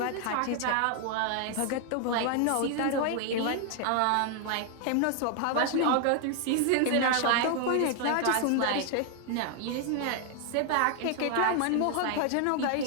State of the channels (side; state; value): both; different; correlation 0.00